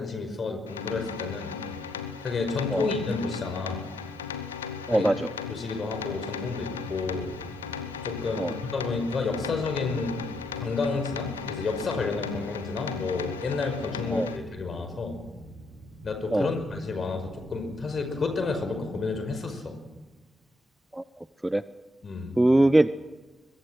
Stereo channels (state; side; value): normal; both; correlation 0.78